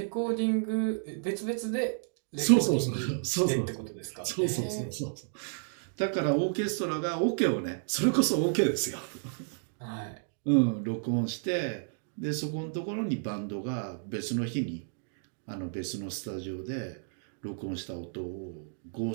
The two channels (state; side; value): silent; left; digital silence